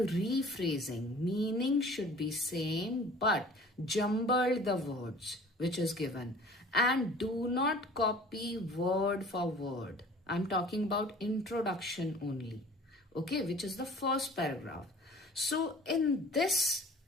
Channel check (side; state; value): both; normal; correlation 0.47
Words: Meaning should be same, but jumble the words which is given. And do not copy word for word. I'm talking about introduction only, okay, which is the first paragraph. So in this,